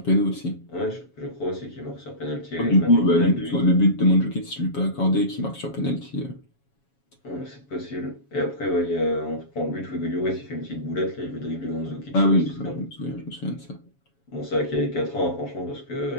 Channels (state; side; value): late; right; 7.2 ms